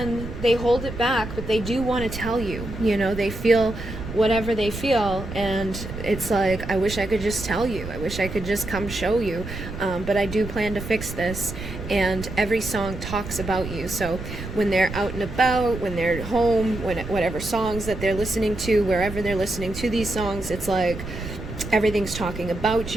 they hold it back, but they do want to tell you. You know, they feel whatever they feel, and it's like, I wish I could just tell you. I wish I could just come show you. But I do plan to fix this. And every song talks about you. So when they're out and about, when they're home, whatever songs that they're listening to, wherever they're listening to these songs, it's like, everything's talking about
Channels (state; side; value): noise; right; rumble, 9 dB below the sound